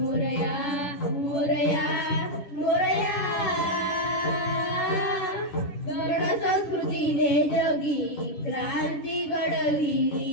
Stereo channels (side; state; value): right; late; 10 ms